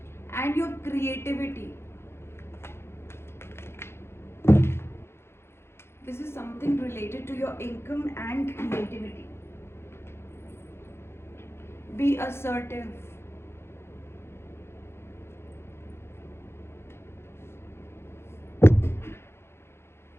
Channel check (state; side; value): late; right; 0.12 ms